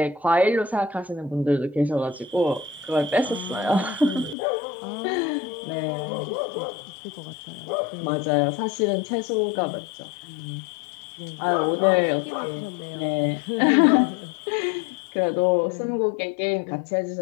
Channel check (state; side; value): drops out; right; at 4.4 s